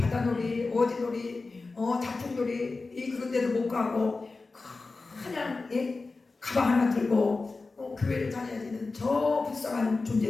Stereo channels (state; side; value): quieter; right; 3.8 dB